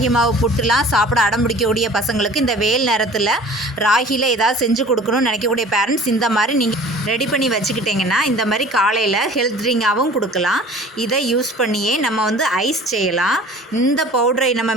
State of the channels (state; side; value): normal; both; correlation 0.46